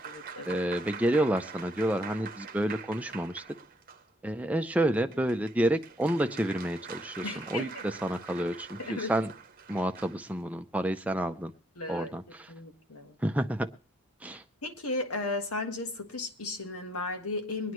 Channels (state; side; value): normal; both; correlation 0.71